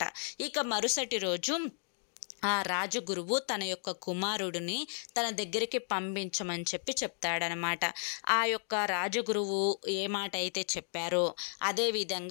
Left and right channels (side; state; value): right; silent; digital silence